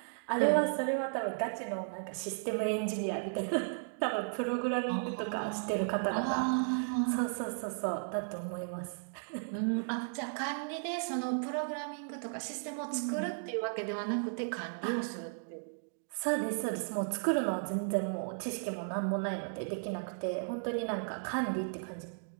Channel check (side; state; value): left; silent; digital silence